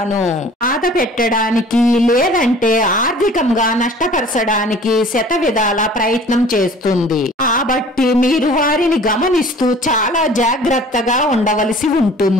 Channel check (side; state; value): both; normal; correlation 0.48